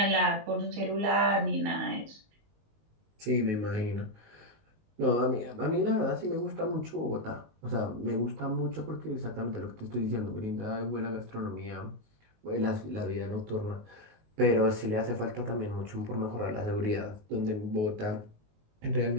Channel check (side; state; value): left; late; 19 ms